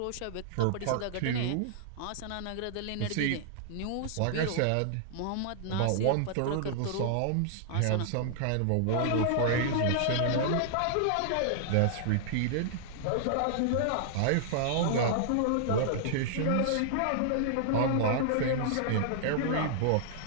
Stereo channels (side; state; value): both; different; correlation -0.01